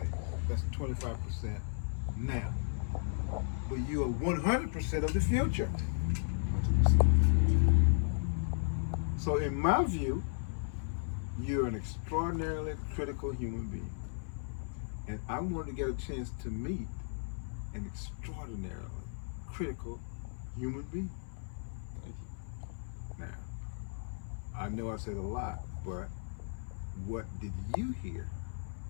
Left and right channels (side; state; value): right; silent; 54 dB below the other